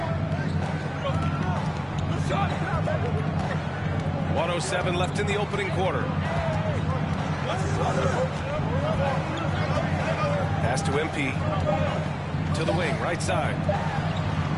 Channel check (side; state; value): both; identical; correlation 1.00